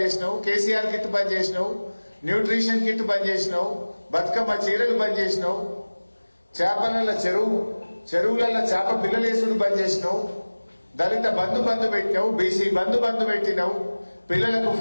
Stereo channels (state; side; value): inverted; both; correlation -1.00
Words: చేసినావు, కేసీఆర్ కిట్ బంద్ చేసినావు, న్యూట్రిషన్ కిట్ బంద్ చేసినావు, బతుకమ్మ చీరలు బంద్ చేసినావు, చేపల చెరువులలో చేప పిల్లలేసుడు బంద్ చేసినావు, దళిత బంధు పెట్టినావు, బీసీ బంధు పెట్టినావు, పిల్లలకు